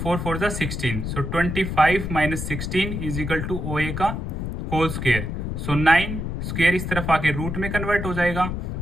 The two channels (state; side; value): noise; left; rumble, 4 dB below the sound